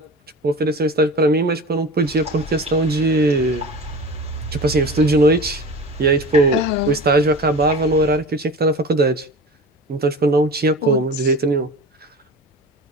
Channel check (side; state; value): both; normal; correlation 0.35